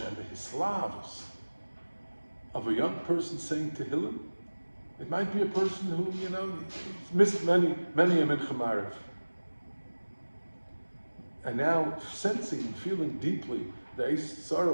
and the hislavs of a young person saying Tehillim. It might be a person who, missed many a mincha ma'ariv, and now sensing and feeling deeply the Eis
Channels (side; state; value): both; inverted; correlation -1.00